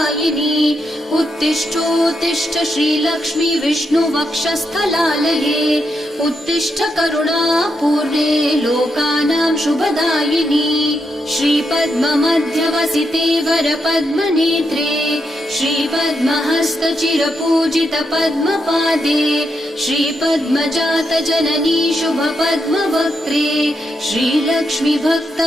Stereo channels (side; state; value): both; normal; correlation 0.82